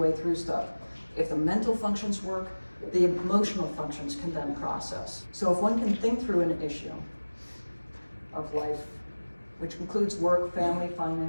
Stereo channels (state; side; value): inverted; both; correlation -1.00